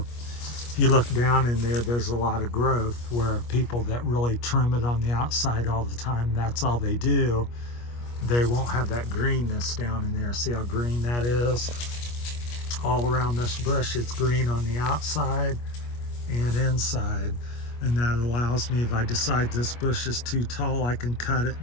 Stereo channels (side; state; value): right; late; 25 ms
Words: if you look down in there, there's a lot of growth, where people that really trim it on the outside all the time, that's all they do, they won't have that greenness down in there. See how green that is? All around this bush, it's green on the outside and inside. And that allows me, if I decide this bush is too tall, I can cut it